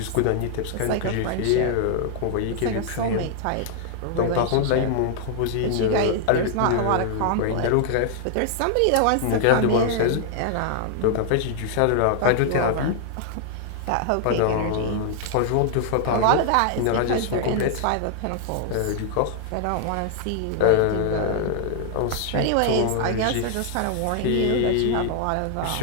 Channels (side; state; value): both; different; correlation -0.01